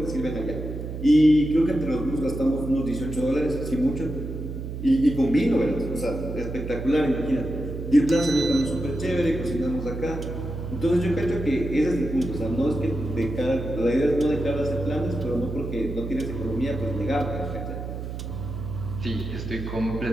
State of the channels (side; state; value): right; noise; hum, 7 dB below the sound